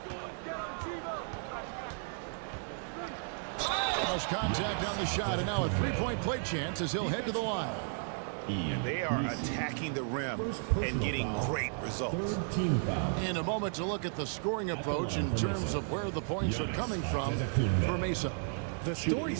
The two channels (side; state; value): left; silent; 55 dB below the other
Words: Cross contact on the shot, and now a three-point play chance as he'll head to the line. And they are attacking the rim and getting great results. In a moment to look at the scoring approach in terms of where the points are coming from for Mesa. The story